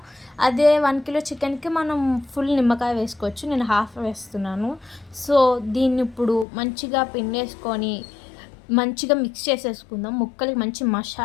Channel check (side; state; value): right; drops out; at 6.5 s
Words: అదే 1 కిలో చికెన్కి మనం ఫుల్ నిమ్మకాయ వేసుకోవచ్చు, నేను హాఫ్ వేస్తున్నాను. సో దీన్ని ఇప్పుడు మంచిగా పిండేసుకొని మంచిగా మిక్స్ చేసేసుకుందాం. ముక్కలకి మంచి